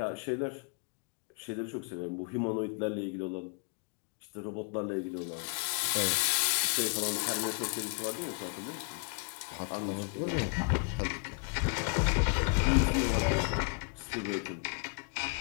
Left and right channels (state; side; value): quieter; right; 35.7 dB